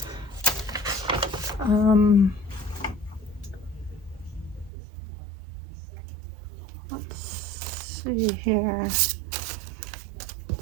see here. Let's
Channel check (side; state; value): left; drops out; at 4.7 s